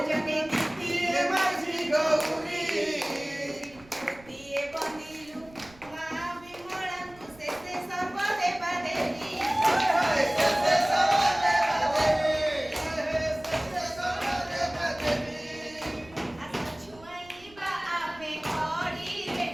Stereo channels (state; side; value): noise; right; rumble, 24 dB below the sound